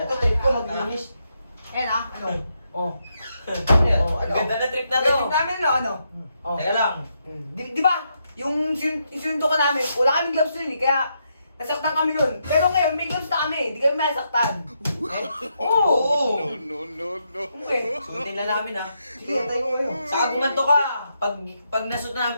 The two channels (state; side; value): inverted; both; correlation -0.80